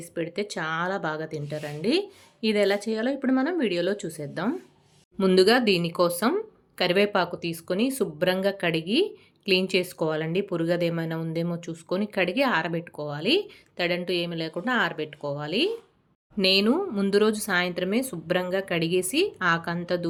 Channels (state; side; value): identical; both; correlation 1.00